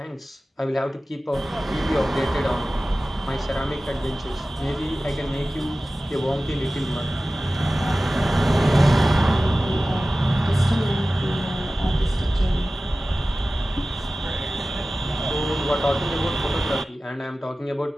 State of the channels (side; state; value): both; normal; correlation 0.96